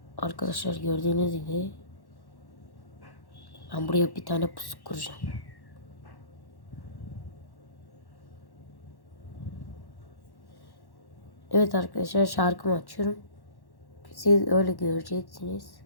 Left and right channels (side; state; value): right; late; 1.1 ms